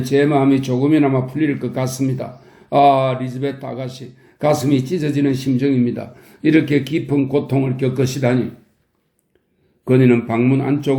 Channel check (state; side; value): identical; both; correlation 1.00